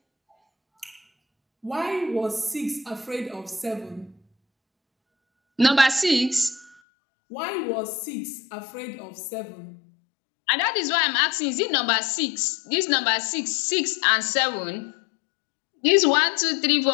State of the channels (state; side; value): drops out; right; at 6.8 s